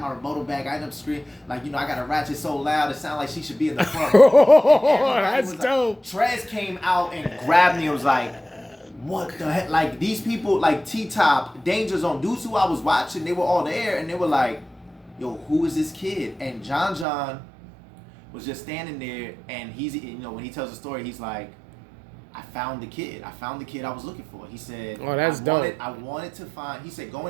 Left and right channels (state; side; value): drops out; left; at 17.1 s